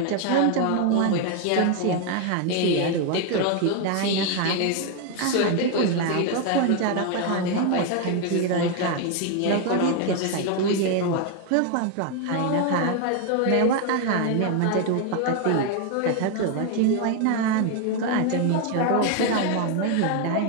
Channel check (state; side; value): different; both; correlation 0.01